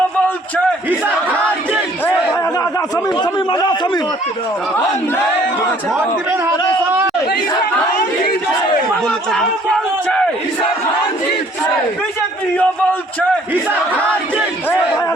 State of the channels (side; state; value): both; normal; correlation 0.59